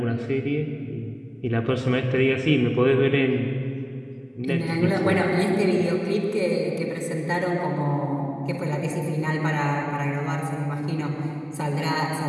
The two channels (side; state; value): both; identical; correlation 1.00